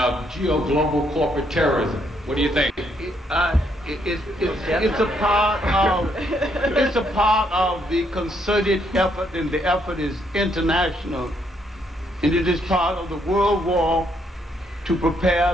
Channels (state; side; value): normal; both; correlation 0.73